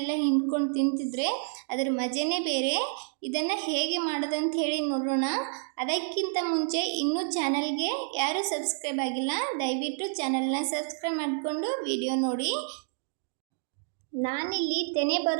ಹಿಂಡ್ಕೊಂಡು ತಿಂತಿದ್ರೆ ಅದರ ಮಜನೇ ಬೇರೆ. ಇದನ್ನು ಹೇಗೆ ಮಾಡೋದಂತ ಹೇಳಿ ನೋಡೋಣ. ಅದಕ್ಕಿಂತ ಮುಂಚೆ ಇನ್ನೂ ಚಾನಲ್ಗೆ ಯಾರು ಸಬ್ಸ್ಕ್ರೈಬ್ ಆಗಿಲ್ಲ, ದಯವಿಟ್ಟು ಚಾನಲ್ನ ಸಬ್ಸ್ಕ್ರೈಬ್ ಮಾಡಿಕೊಂಡು ವಿಡಿಯೋ ನೋಡಿ. ನಾನಿಲ್ಲಿ ತೆನೆ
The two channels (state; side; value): silent; left; digital silence